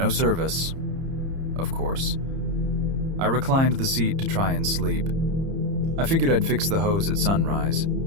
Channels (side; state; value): left; late; 30 ms